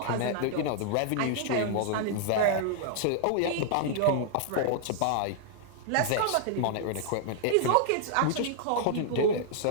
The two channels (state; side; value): different; both; correlation -0.01